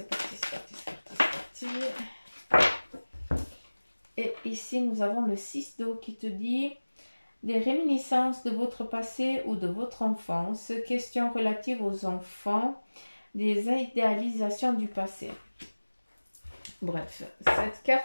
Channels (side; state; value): both; inverted; correlation -1.00